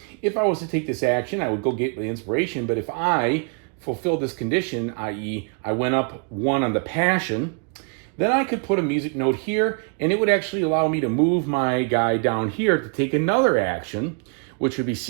if I was to take this action, I would go get the inspiration, but if I fulfill this condition, i.e. I went up 1 on the passion, then I could put a music note here, and it would actually allow me to move my guy down here to take another action, which would be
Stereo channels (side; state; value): left; quieter; 39.0 dB